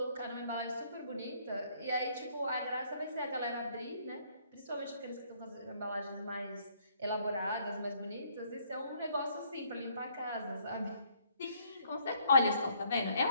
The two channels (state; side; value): inverted; both; correlation -0.66